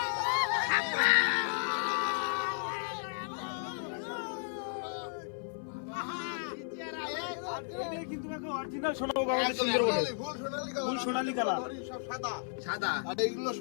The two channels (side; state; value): right; silent; 55 dB below the other